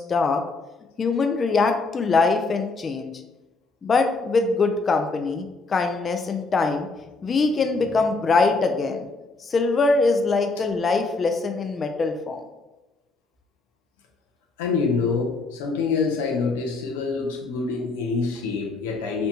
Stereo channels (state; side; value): quieter; right; 3.7 dB